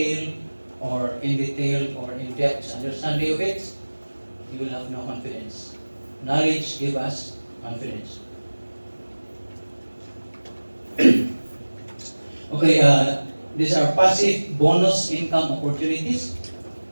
or in-depth understanding of it, you will have no confidence. Knowledge gives us confidence. Okay, these are passive bonus income opportunities.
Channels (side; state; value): both; inverted; correlation -1.00